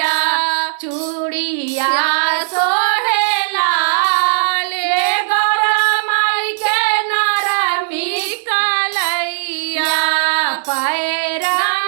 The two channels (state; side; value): silent; left; digital silence